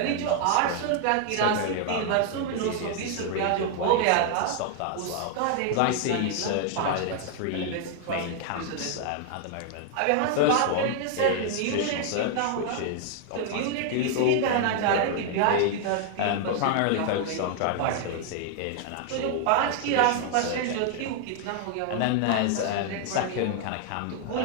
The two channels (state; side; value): different; both; correlation 0.00